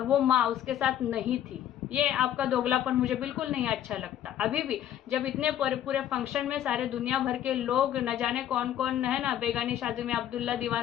वो माँ उसके साथ नहीं थी। ये आपका दोगलापन मुझे बिल्कुल नहीं अच्छा लगता। अभी भी जब इतने पूरे फंक्शन में सारे दुनिया भर के लोग, न जाने कौन कौन है ना, बेगानी शादी में अब्दुल्ला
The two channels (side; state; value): right; quieter; 11.0 dB